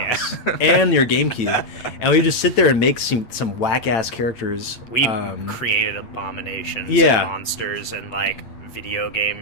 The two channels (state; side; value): late; right; 8.9 ms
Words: and your GameCube, and we just sit there and make some whack ass characters. We created abominations, and monsters, and like video